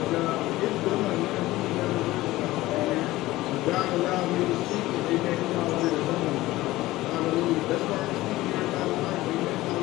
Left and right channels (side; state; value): right; quieter; 17.6 dB